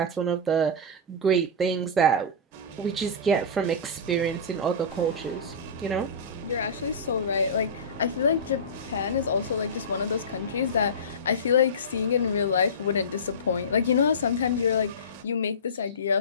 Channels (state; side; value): normal; both; correlation -0.19